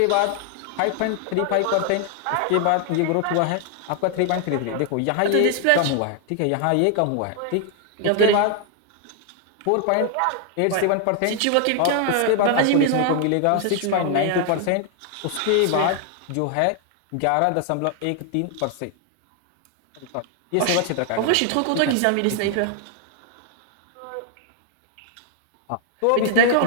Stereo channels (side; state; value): both; different; correlation 0.00